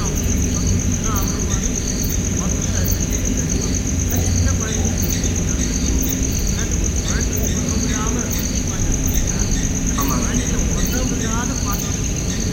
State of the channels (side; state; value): both; identical; correlation 1.00